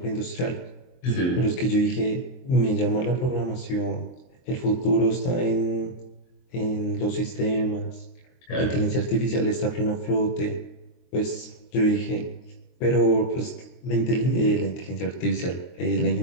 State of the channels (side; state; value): right; late; 23 ms